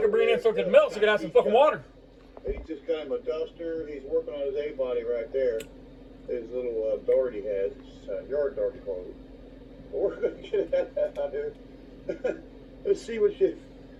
bringing it in so it could melt so he could have some fucking water. He just got him a duster. He's working on his A-body right there. His little dart he has. It's yard dart clothes. We're going to get that out here. Let's see what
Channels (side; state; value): both; identical; correlation 1.00